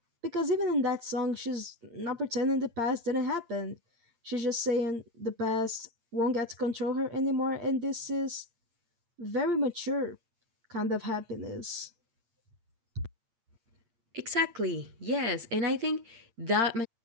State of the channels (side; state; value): left; late; 8.7 ms